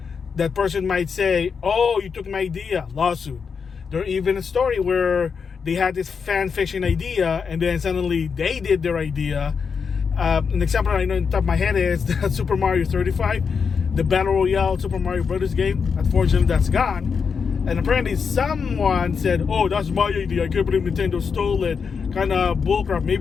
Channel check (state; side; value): quieter; right; 5.9 dB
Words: that person might say, oh, you took my idea, lawsuit. There's even a story where they had this fan fiction idea and then suddenly they did their idea. An example I know in the top of my head is that Super Mario 35, the Battle Royale Super Mario Brothers game. Unfortunately, that's gone. And apparently someone said, oh, that's my idea, I can't believe Nintendo stole it. Kind of bullcrap.